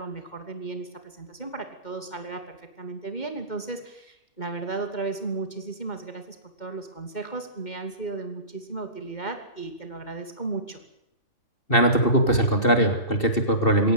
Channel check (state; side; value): late; right; 2.7 ms